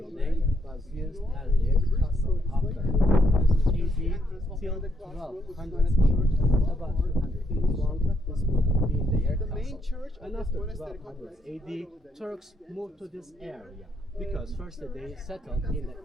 was used as their castle after 1000 AD till 1200 church, about 200 years long. This building being their castle. And after 1200 AD, Turks moved to this area, because first they settled in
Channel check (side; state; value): both; normal; correlation 0.75